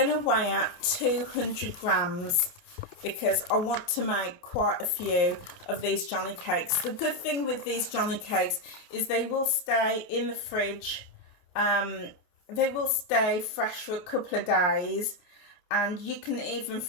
to weigh out 200 grams because I want to make quite a few of these Johnny cakes. The good thing with these Johnny cakes is they will stay in the fridge. They will stay fresh for a couple of days, and you can even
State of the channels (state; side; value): late; right; 28 ms